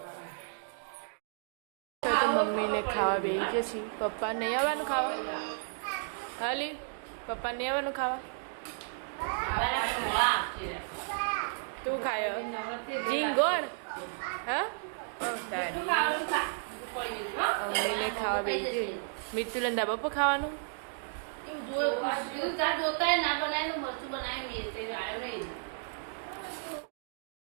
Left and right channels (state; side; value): silent; left; digital silence